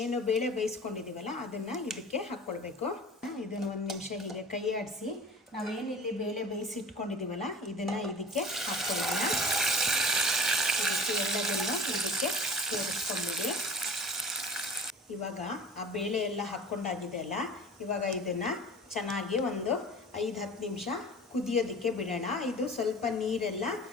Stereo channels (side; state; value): both; normal; correlation 0.40